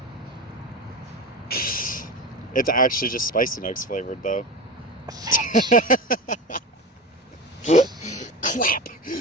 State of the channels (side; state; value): both; normal; correlation 0.26